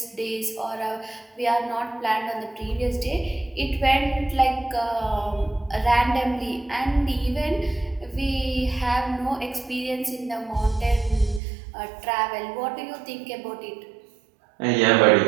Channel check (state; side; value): drops out; left; at 11.4 s